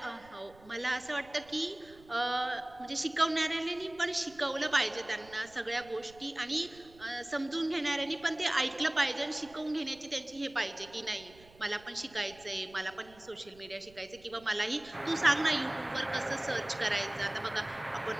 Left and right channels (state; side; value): noise; right; rumble, 24 dB below the sound